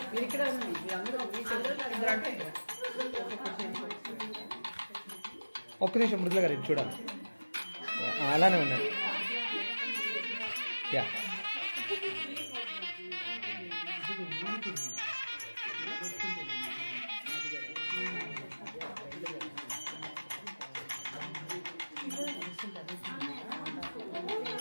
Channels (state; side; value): inverted; both; correlation -1.00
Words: ఒక్క నిమిషం మృదుల గారు ఇది చూడాలి. అలానే ఉన్నాడు. యా